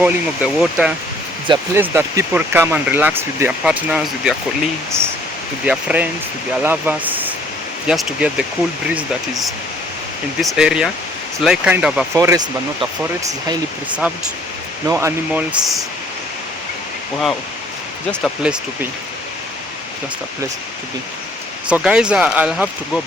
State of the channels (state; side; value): normal; both; correlation 0.59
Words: of the water. It's a place that people come and relax with their partners, with their colleagues, with their friends, with their lovers, just to get the cool breeze that is in this area. It's like kind of a forest, but not a forest. It's highly preserved. No animals. Wow, just a place to be. Just a place to be. So guys, I'll have to go